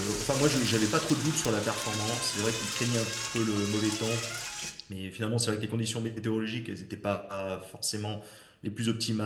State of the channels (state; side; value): identical; both; correlation 1.00